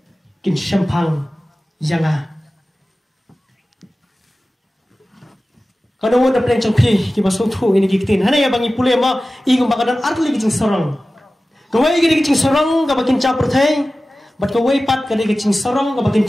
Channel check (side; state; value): both; normal; correlation 0.96